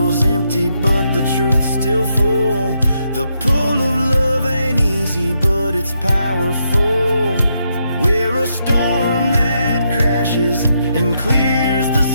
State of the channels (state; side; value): inverted; both; correlation -0.80